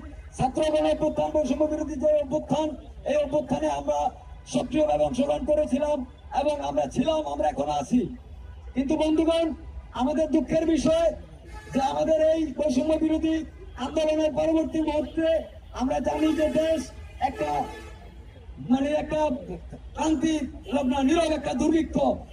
ছাত্র গণ অভ্যুত্থান, বৈষম্য বিরোধী যে অভ্যুত্থান, এই অভ্যুত্থানে আমরা সক্রিয়ভাবে অংশগ্রহণ করেছিলাম এবং আমরা ছিলাম, আমরা এখনো আছি। কিন্তু বন্ধুগণ, আমাদের দুঃখের বিষয় যে আমাদের এই বৈষম্য বিরোধী আন্দোলনের পরবর্তী মুহূর্তে আমরা জানি যে দেশ একটা ক্রান্তি নীরব একটা দুর্ভিক্ষ,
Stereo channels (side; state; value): both; identical; correlation 1.00